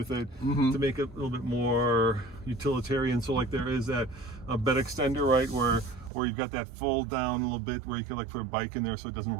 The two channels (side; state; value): left; drops out; at 6.1 s